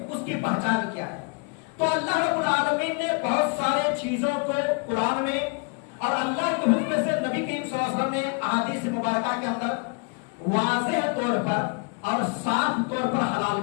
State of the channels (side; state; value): right; quieter; 34.7 dB